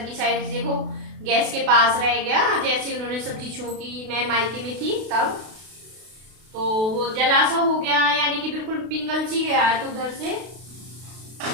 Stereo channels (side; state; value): left; late; 32 ms